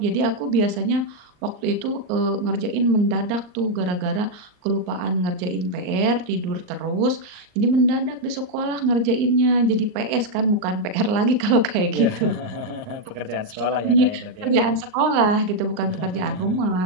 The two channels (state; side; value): late; left; 39 ms